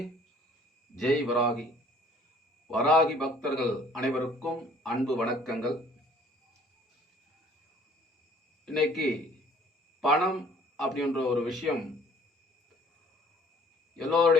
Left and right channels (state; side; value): normal; both; correlation 0.56